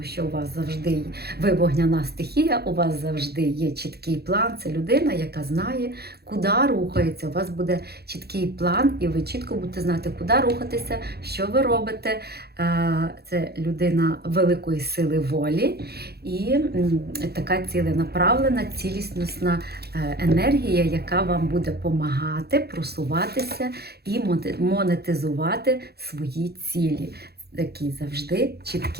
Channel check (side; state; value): left; late; 0.46 ms